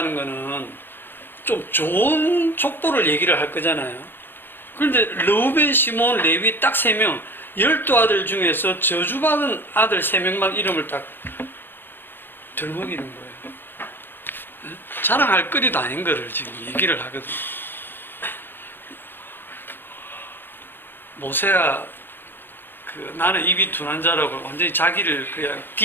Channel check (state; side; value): late; right; 0.099 ms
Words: 거는 좀 좋은 족보를 얘기를 할 거잖아요. 그런데 르우벤, 시몬, 레위 딱 3명 12아들 중에서 저주받은 아들 3명만 이름을 딱 들먹이는 거예요. 자랑할 거리도 아닌 거를 지금 얘기를 하거든요. 모세가 나는 입이 둔한 자라고 완전히 자기를 그냥